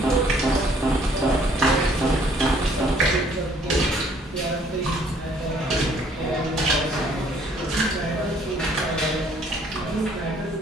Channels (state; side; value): normal; both; correlation 0.61